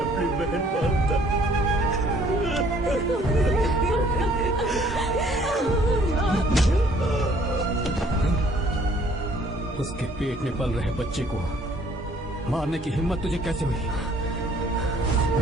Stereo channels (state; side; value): normal; both; correlation 0.60